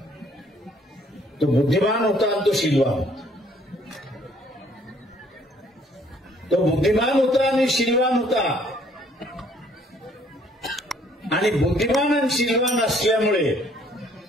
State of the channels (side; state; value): both; normal; correlation 0.62